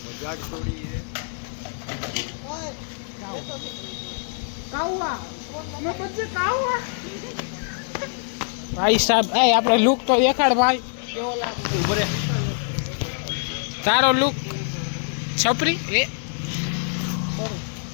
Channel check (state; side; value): silent; right; 62 dB below the other